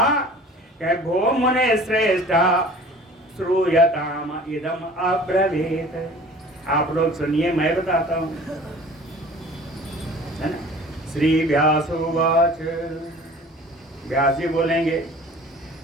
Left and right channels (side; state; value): both; normal; correlation 0.46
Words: कहे भो मुने श्रेष्ठा श्रूयताम इदम अब्रवीत। आप लोग सुनिए, मैं बताता हूँ, है ना। श्री व्यासोवाच, व्यास जी बोलेंगे,